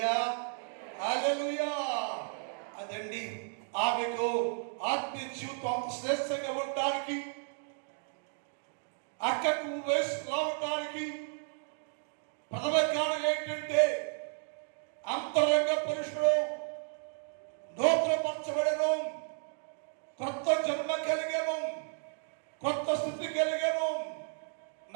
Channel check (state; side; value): silent; left; 56 dB below the other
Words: హల్లెలూయా. అదండి ఆమెకు ఆత్మీయ జీవితం శ్రేష్టంగా ఉండడానికి, అక్కకు వయసు రావడానికి ప్రథమ కారణం ఏంటంటే అంతరంగ పురుషుడు నూతనపరచబడెను, కొత్త జన్మ కలిగెను, కొత్త స్థితి కలిగెను,